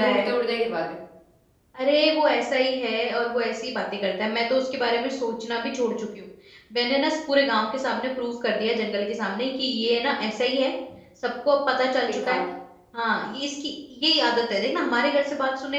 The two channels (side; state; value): both; identical; correlation 1.00